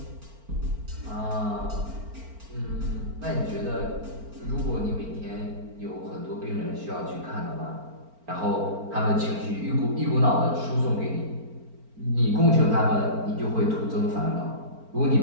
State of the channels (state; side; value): late; left; 4.4 ms